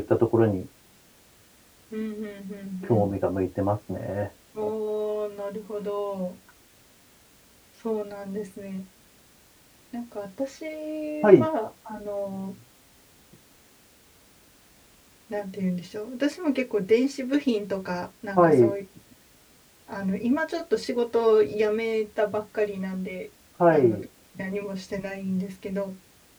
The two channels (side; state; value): both; identical; correlation 1.00